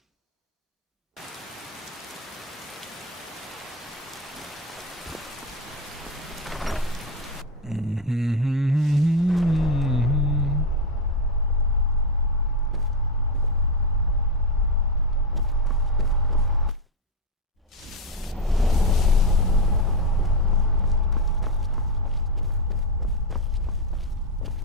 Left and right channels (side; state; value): both; normal; correlation 0.10